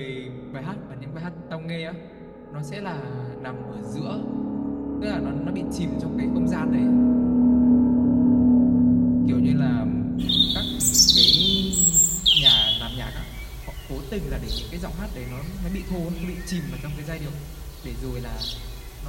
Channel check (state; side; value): identical; both; correlation 1.00